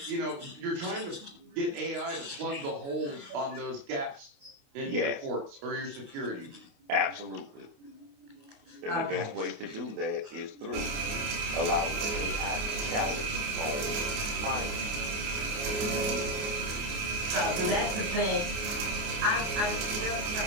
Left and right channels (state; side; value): late; left; 29 ms